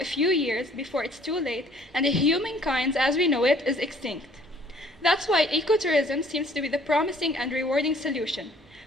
few years before it's too late and humankind as we know it is extinct. That's why ecotourism seems to be the promising and rewarding solution.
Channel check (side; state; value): both; normal; correlation 0.58